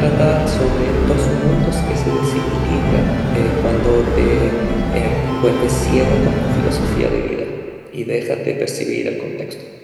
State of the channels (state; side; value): identical; both; correlation 1.00